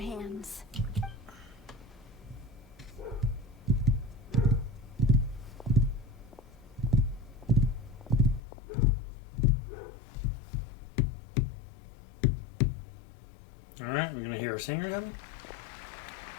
Alright, we're gonna hear a singer coming.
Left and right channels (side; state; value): right; drops out; at 8.4 s